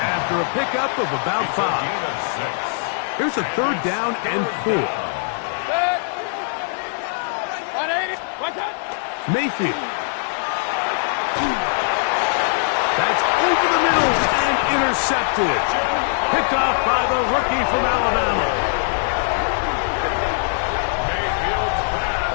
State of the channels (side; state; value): right; silent; 60 dB below the other